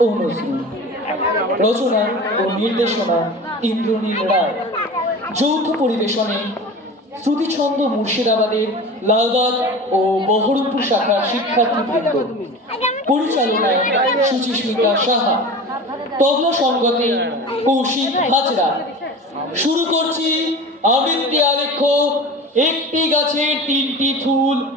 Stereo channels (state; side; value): normal; both; correlation 0.34